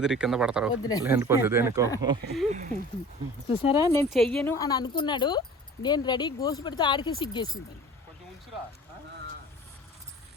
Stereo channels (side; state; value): both; normal; correlation 0.42